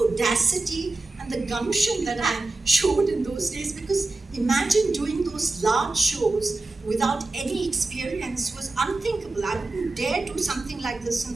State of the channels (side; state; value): left; quieter; 3.3 dB